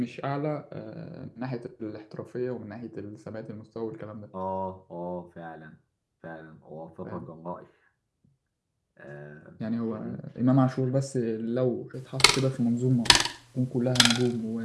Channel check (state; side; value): identical; both; correlation 1.00